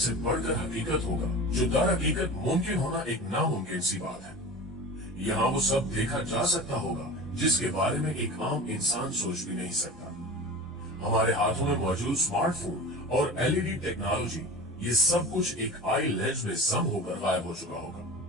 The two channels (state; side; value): normal; both; correlation 0.34